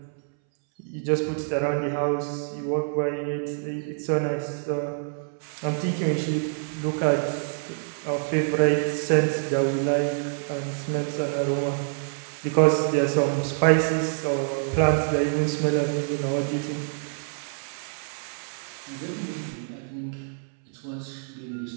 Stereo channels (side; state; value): left; silent; 61 dB below the other